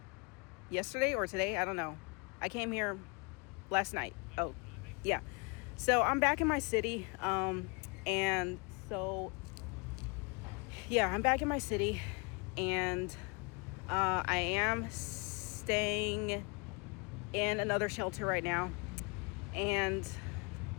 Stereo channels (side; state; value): right; quieter; 31.8 dB